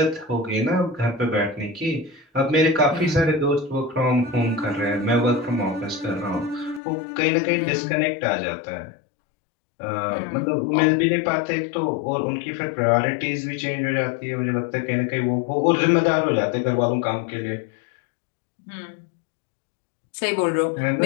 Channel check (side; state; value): right; drops out; at 6.8 s